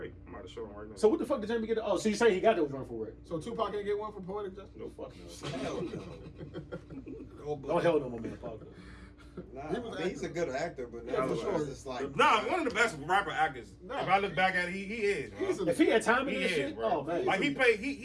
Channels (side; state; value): both; identical; correlation 1.00